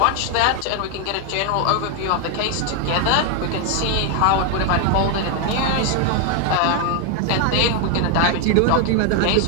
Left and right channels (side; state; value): both; different; correlation 0.01